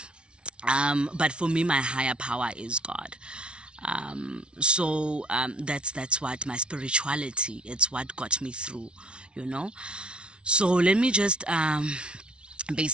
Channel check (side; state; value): left; late; 0.057 ms